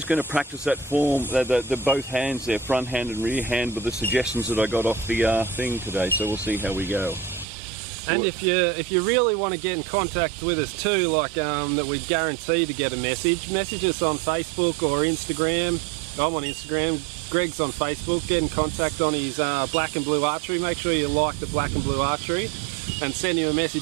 going to practice that form, the both hands there, front hand and rear hand, with the suggestions that I got off the thing today. So we'll see how we go. And if you really want to get in contact with us too, like that we guarantee to get a message us on Facebook or Instagram. I'm on Instagram. Greg's on Facebook. Get in contact on his Black and Blue Archery. Make sure you like the Black and Blue Archery and send him a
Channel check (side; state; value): left; drops out; at 7.5 s